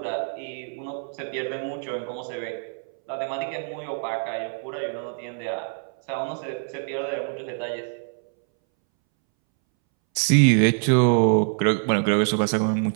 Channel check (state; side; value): silent; left; 62 dB below the other